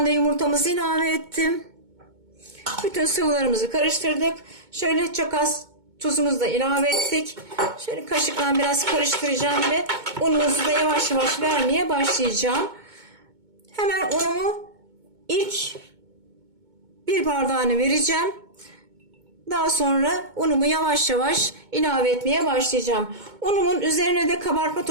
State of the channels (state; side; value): late; left; 2.2 ms